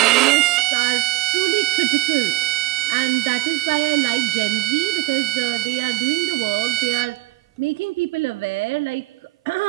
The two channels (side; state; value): left; quieter; 20.2 dB